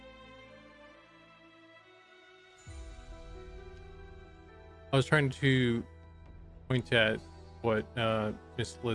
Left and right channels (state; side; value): identical; both; correlation 1.00